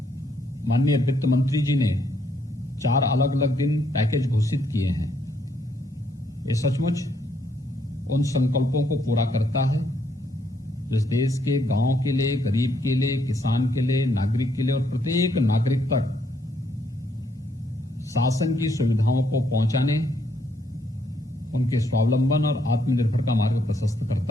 माननीय वित्त मंत्री जी ने 4 अलग अलग दिन पैकेज घोषित किए हैं, ये सचमुच उन संकल्पों को पूरा करता है जिस देश के गांव के लिए, गरीब के लिए, किसान के लिए, नागरिक के लिए और प्रत्येक नागरिक तक शासन की सुविधाओं को पहुंचाने, उनके स्वावलंबन और आत्मनिर्भर का मार्ग प्रशस्त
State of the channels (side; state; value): both; normal; correlation 0.72